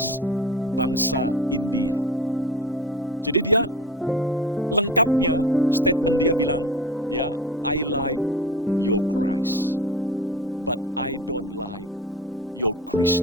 bangsa India. Jadi dia lengkapnya statement dia bilang, ya, I like your Christ, but I don't like your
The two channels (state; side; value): normal; both; correlation 0.32